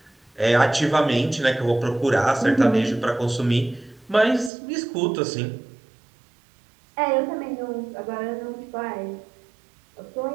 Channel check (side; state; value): left; drops out; at 4.5 s